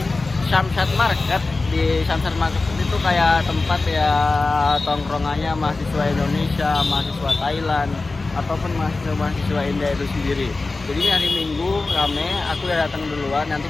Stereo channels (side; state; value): right; quieter; 3.5 dB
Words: Samsat Market. Di Samsat Market itu kayak tempat ya tongkrongannya mahasiswa Indonesia, mahasiswa Thailand, ataupun mahasiswa India itu sendiri. Jadi ini hari Minggu rame. Aku udah datang duluan.